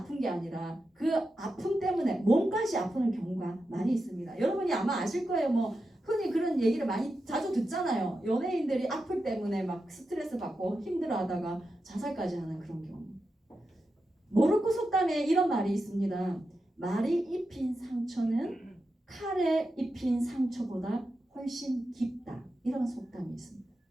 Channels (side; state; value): both; normal; correlation 0.89